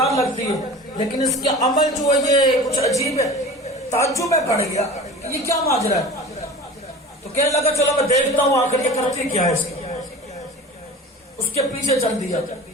لگتی ہے، لیکن اس کے عمل جو ہے یہ کچھ عجیب ہے۔ تعجب میں پڑ گیا یہ کیا ماجرا ہے، تو کہنے لگا چلو میں دیکھتا ہوں آخر یہ کرتی کیا ہے۔ اس کے پیچھے چل دیا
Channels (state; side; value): normal; both; correlation 0.37